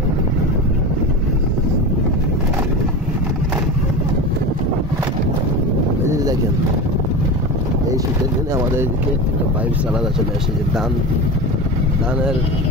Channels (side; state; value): both; normal; correlation 0.26